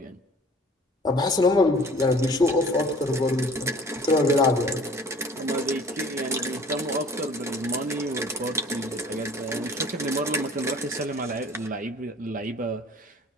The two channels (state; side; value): normal; both; correlation 0.49